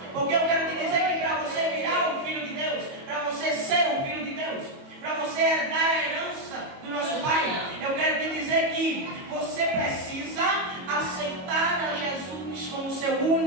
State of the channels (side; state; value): left; late; 22 ms